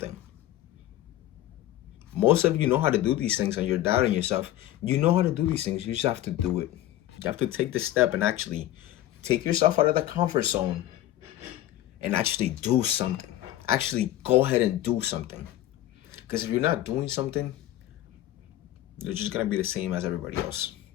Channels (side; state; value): right; quieter; 14.0 dB